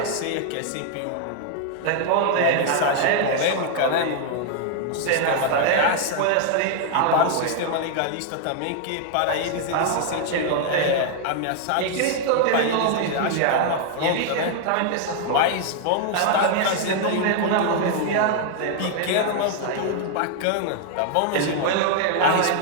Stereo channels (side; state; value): both; different; correlation 0.00